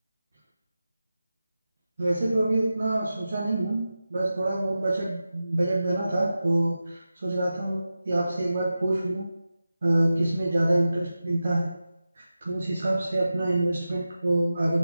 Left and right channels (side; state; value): both; inverted; correlation -0.93